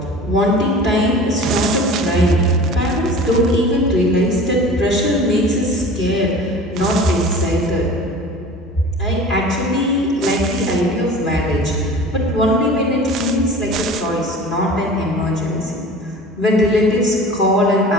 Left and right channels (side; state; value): both; normal; correlation 0.40